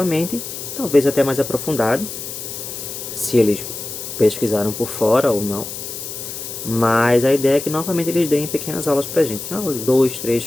talvez até mais aprofundado, se eles pesquisaram por fora ou não. Mas a ideia é que novamente eles deem pequenas aulas pra gente, 2,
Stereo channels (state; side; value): noise; left; hiss, 8 dB below the sound